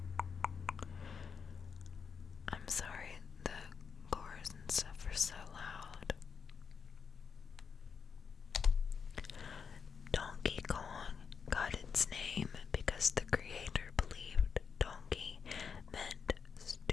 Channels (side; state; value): right; quieter; 6.2 dB